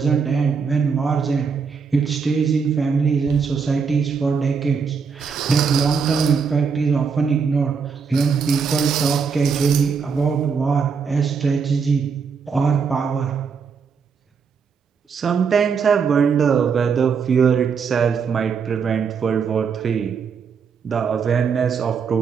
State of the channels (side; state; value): left; quieter; 5.9 dB